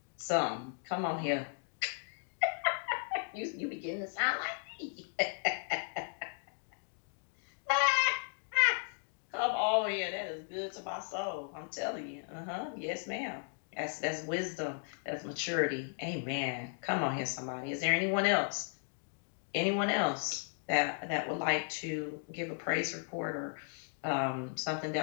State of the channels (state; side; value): silent; right; 54 dB below the other